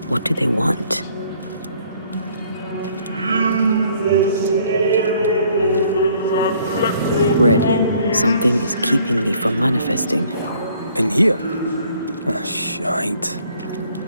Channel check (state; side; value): inverted; both; correlation -0.61